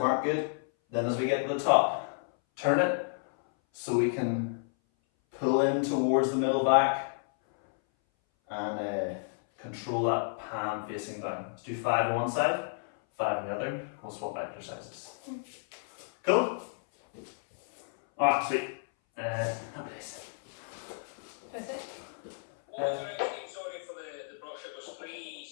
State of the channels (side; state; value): right; silent; 57 dB below the other